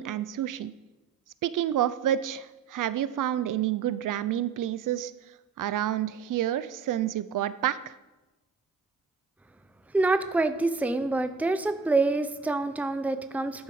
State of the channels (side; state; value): left; quieter; 5.7 dB